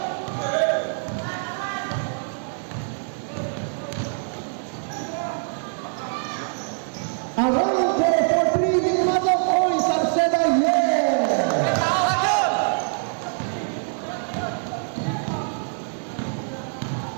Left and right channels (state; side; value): silent; left; 62 dB below the other